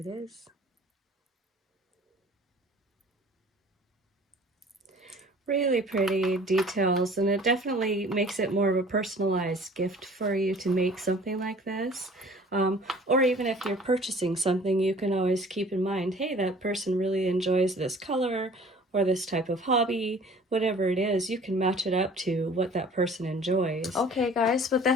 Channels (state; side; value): normal; both; correlation 0.49